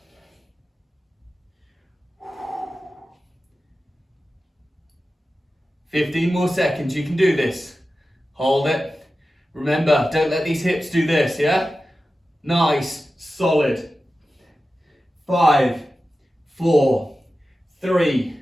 "15 more seconds, you can do this. Hold it. Remember, don't let these hips do this, yeah? Nice, solid. 5, 4, 3,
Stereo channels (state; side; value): normal; both; correlation 0.94